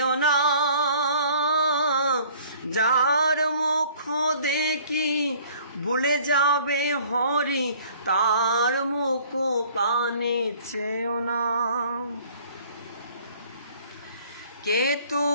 না, যার মুখ দেখি ভুলে যাবে হরি, তার মুখ পানে চেও না। কে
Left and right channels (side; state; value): both; inverted; correlation -0.54